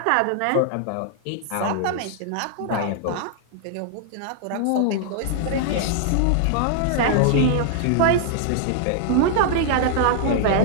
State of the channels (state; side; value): different; both; correlation -0.01